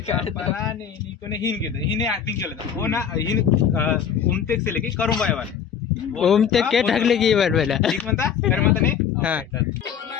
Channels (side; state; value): right; quieter; 7.8 dB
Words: पराने निकोने हिन केलं हिने ऍक्टिंग केलं हो ना हिन उमतेक से लेके करून बायवाले ओम ते के ढकले की बार पहिला ठीक म्हणता तर म्हणता नाही हा